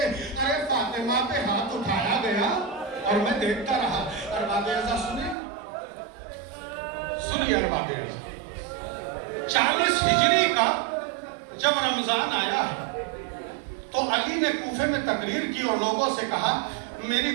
جب رمضان آیا ہے تو علی نے کوفے میں تقریر کی اور لوگوں سے کہا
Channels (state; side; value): drops out; left; at 5.4 s